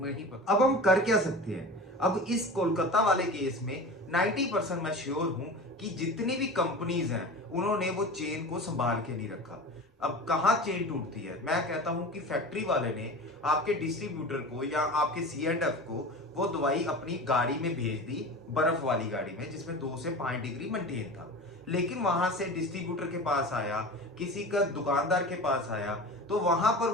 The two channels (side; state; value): both; normal; correlation 0.33